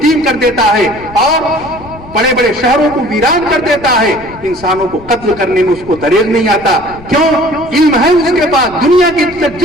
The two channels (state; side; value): noise; left; rumble, 19 dB below the sound